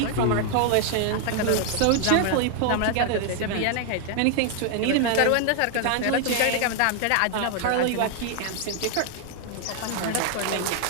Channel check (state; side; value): different; both; correlation 0.00